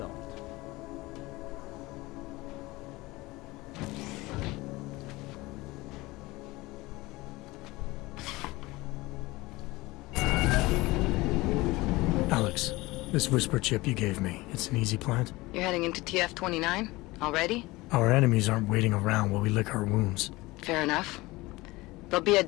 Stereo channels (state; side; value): quieter; right; 20.9 dB